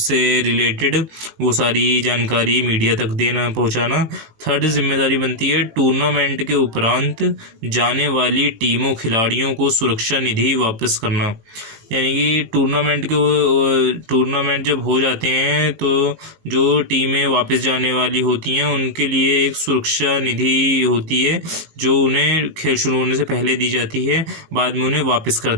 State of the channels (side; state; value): left; late; 18 ms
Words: से रिलेटेड, वो सारी जानकारी मीडिया तक पहुंचाना। थर्ड जिम्मेदारी बनती है टूर्नामेंट के उपरांत जाने वाली टीमों खिलाड़ियों को सुरक्षा निधि वापस करना। यानी कि टूर्नामेंट जब हो जाते हैं तो जो टीमें वापस जाने वाली होती हैं उनके लिए एक सुरक्षा निधि होती है, जो उन्हें खेल शुरू होने से पहले दी जाती है, बाद में उन्हें वापस कर